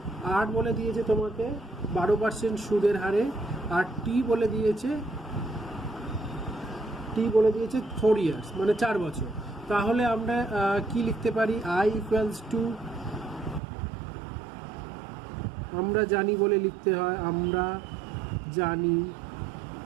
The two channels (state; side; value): drops out; left; at 13.6 s